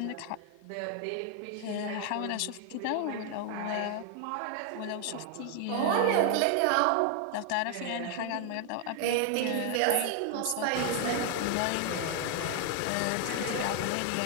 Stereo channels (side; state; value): both; different; correlation 0.00